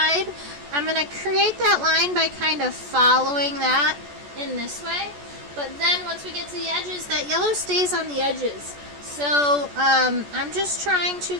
I'm going to create that line by kind of following that in this way. But then once we get to the edges, that yellow stays on the edges. So I'm just trying to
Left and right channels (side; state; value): left; late; 14 ms